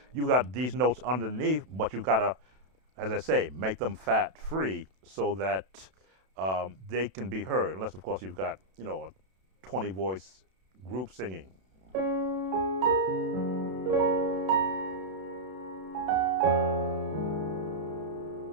you've got these notes underneath, but you've got to, as I say, make them fat free so that they can be heard. Unless, of course, you've got, a 20 voice group singing.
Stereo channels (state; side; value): late; left; 32 ms